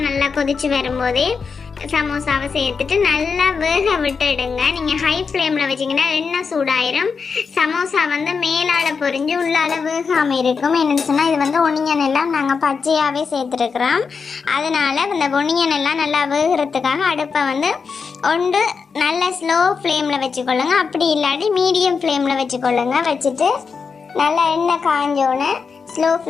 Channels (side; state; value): right; quieter; 5.4 dB